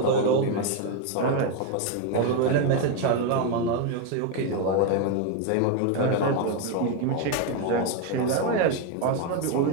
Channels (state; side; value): different; both; correlation 0.02